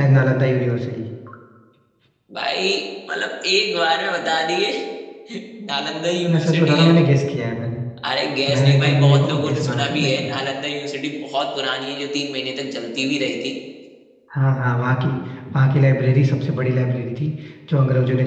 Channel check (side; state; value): both; identical; correlation 1.00